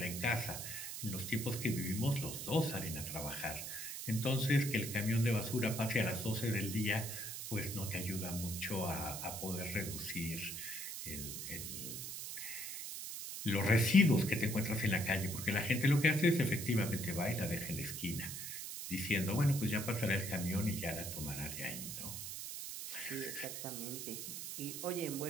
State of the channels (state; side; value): noise; right; hiss, 6 dB below the sound